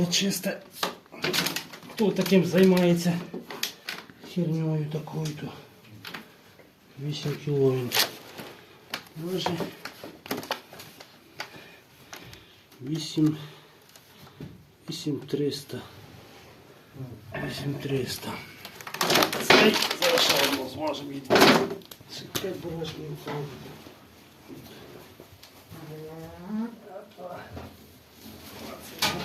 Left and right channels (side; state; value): both; identical; correlation 1.00